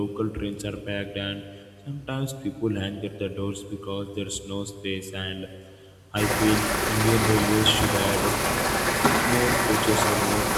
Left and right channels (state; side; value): identical; both; correlation 1.00